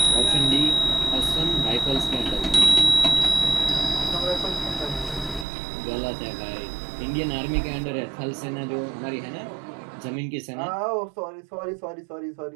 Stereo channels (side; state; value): left; drops out; at 5.5 s